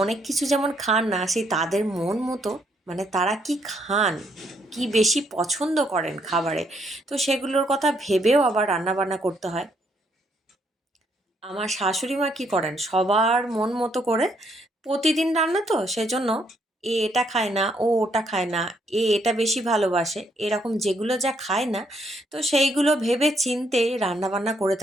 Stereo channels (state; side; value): normal; both; correlation 0.72